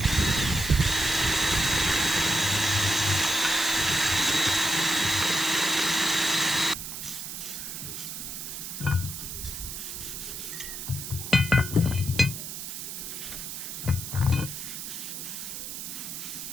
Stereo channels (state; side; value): noise; right; hiss, 7 dB below the sound